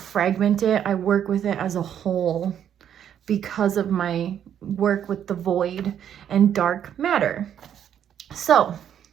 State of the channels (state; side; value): quieter; left; 9.5 dB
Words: it. I work with it as a whole because of my work with the void and dark matter. So